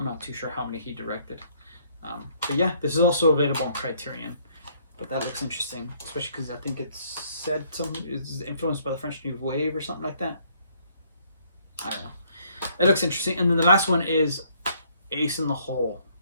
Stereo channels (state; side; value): inverted; both; correlation -0.65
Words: not too sure how many he directed. But yeah, this is also available on Criterion. But that looks interesting, especially because I think it's said it's influenced by the French New Wave or something like that. I don't know. It looks interesting. And then the last one is Ace in the Hole,